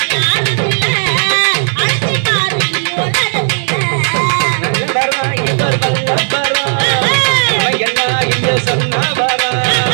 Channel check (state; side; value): silent; left; digital silence